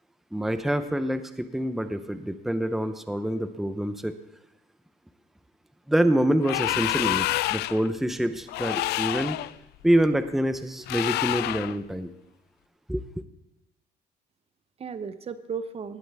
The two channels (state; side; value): normal; both; correlation 0.75